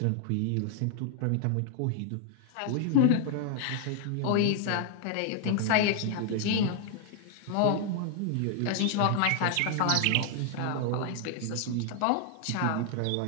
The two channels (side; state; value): both; different; correlation 0.00